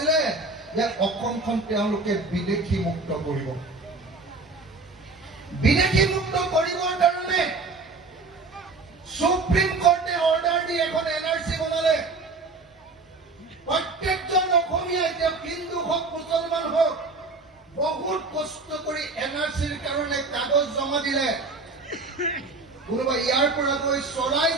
যে অসমখন তেওঁলোকে বিদেশী মুক্ত কৰিব। বিদেশী মুক্ত কৰিবৰ কাৰণে সুপ্ৰিম কোৰ্টে অৰ্ডাৰ দি এখন এনআৰচি বনালে। প্ৰত্যেকজন অসমীয়া, এতিয়া হিন্দু হওক মুছলমান হওক, বহুত কষ্ট কৰি এনআৰচিৰ কাৰণে কাগজ জমা দিলে। কোনোবা ইয়াৰ পৰা গৈ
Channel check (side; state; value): left; quieter; 3.7 dB